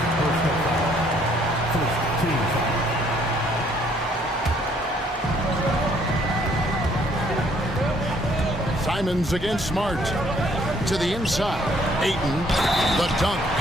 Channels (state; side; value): normal; both; correlation 0.64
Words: Simons against Smart. To the inside. Ayton, the dunk,